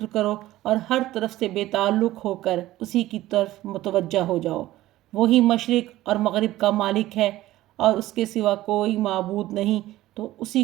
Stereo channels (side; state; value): left; quieter; 15.8 dB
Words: کرو اور ہر طرف سے بے تعلق ہو کر اسی کی طرف متوجہ ہو جاؤ۔ وہی مشرق اور مغرب کا مالک ہے اور اس کے سوا کوئی معبود نہیں، تو اسی